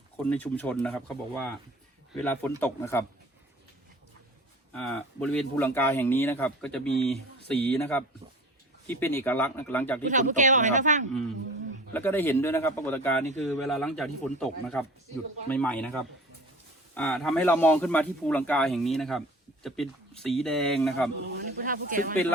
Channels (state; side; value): normal; both; correlation 0.41